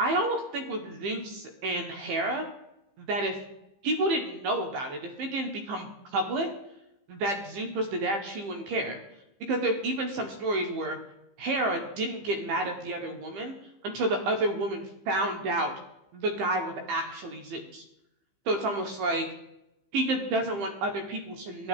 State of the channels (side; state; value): left; late; 15 ms